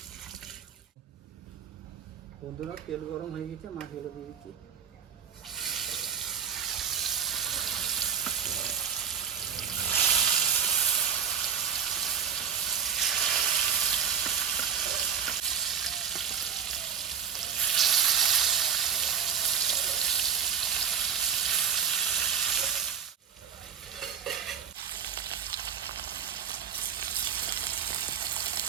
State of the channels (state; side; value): quieter; left; 7.8 dB